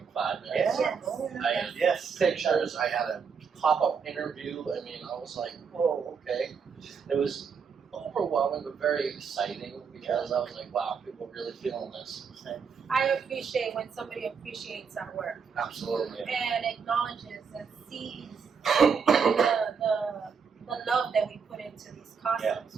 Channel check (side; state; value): left; quieter; 6.1 dB